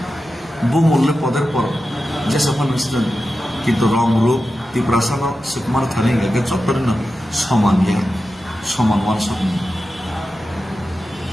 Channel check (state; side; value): normal; both; correlation 0.92